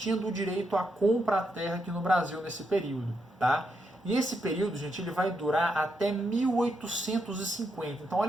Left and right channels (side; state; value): both; normal; correlation 0.81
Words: do direito a comprar a terra aqui no Brasil nesse período, tá? E esse período, gente, ele vai durar até 1850. Então,